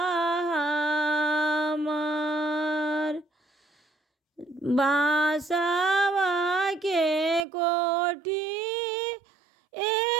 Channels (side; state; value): left; drops out; at 7.5 s